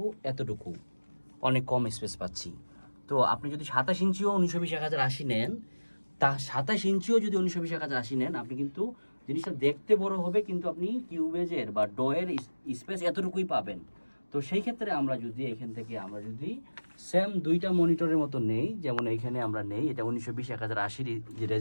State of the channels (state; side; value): inverted; both; correlation -1.00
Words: এতটুকু, অনেক কম স্পেস পাচ্ছি। তো আপনি যদি 27 ইঞ্চিও 1920 1080 নেন, তা 27 ইঞ্চিও যদি 1920 1080 নেন, আপনি কিন্তু জিনিসটা দেখতে বড় হবে, কিন্তু আপনি কিউবেজের বা ডয়ের স্পেস এতটুকুই পাবেন। তো সেই ক্ষেত্রে আমরা যদি এখান থেকে আমরা যদি সেম দুইটা মনিটরের মতো নেই, যেমন এইখানে আমরা নেই, এটা 1920 1080 যে